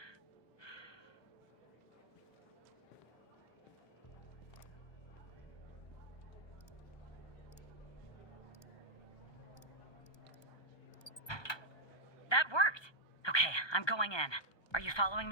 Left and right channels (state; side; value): late; right; 1.2 ms